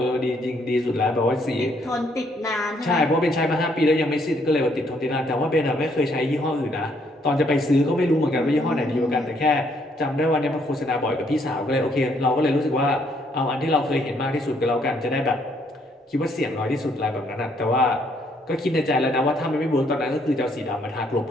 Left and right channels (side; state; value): both; normal; correlation 0.69